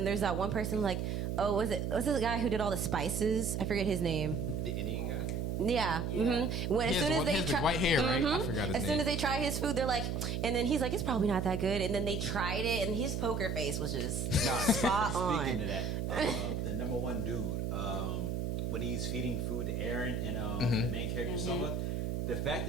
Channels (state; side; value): noise; right; hum, 1 dB below the sound